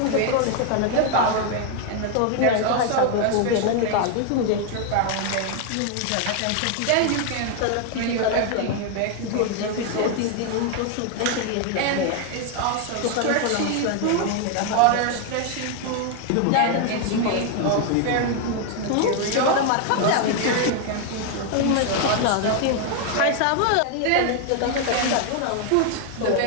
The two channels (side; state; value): both; different; correlation 0.00